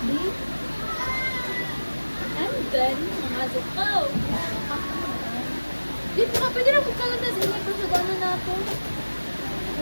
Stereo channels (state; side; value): inverted; both; correlation -1.00